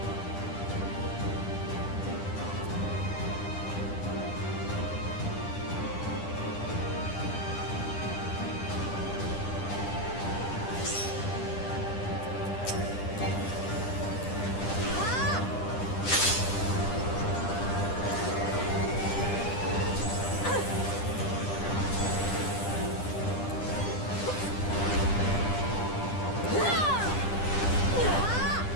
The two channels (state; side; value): late; right; 10 ms